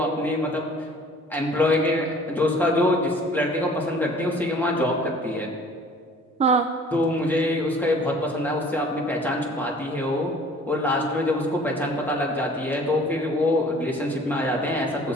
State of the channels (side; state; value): both; normal; correlation 0.51